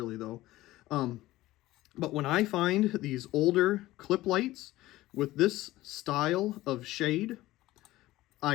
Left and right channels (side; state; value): right; quieter; 16.9 dB